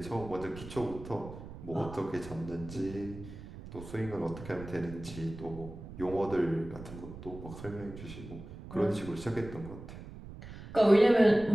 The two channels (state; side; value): noise; right; rumble, 13 dB below the sound